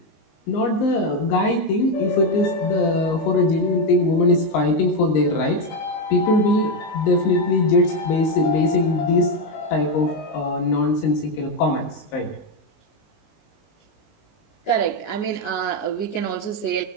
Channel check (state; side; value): late; right; 19 ms